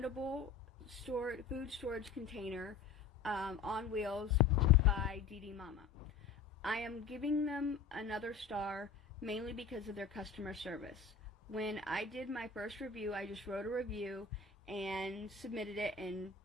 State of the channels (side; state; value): right; quieter; 5.5 dB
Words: food storage container on wheels by DDMOMMY. I am giving them another star mainly because of their customer service. When I did my first review, I just wrote a review and submitted it and